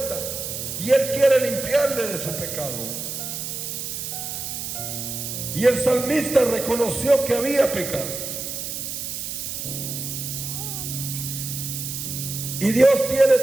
y Él quiere limpiarle de su pecado. Y el salmista reconoció que había pecado. Y Dios tiene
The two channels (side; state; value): right; noise; hiss, 5 dB below the sound